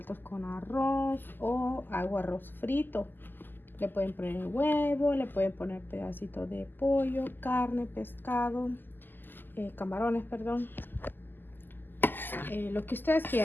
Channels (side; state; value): right; late; 0.092 ms